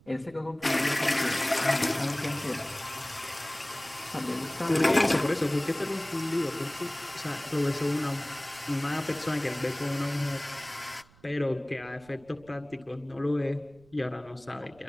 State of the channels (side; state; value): right; noise; rumble, 27 dB below the sound